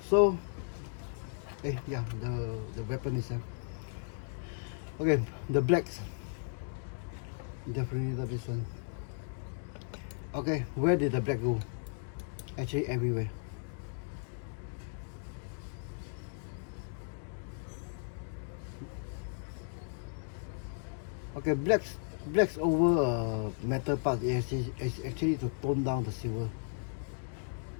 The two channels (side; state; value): right; silent; digital silence